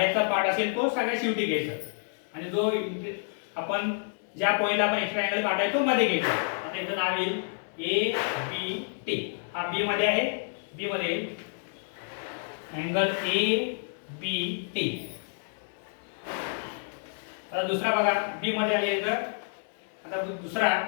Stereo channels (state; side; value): silent; right; digital silence